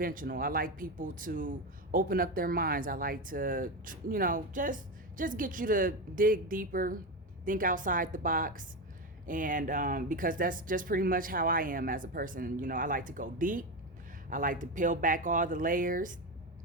I like people to open up their minds. I like to, just get you to dig deeper, think outside the box. And because that's just pretty much how I am as a person. I like to go deep. I like to peel back all the layers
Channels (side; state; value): both; normal; correlation 0.16